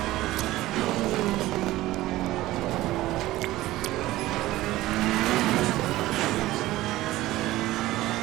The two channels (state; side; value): quieter; left; 16.8 dB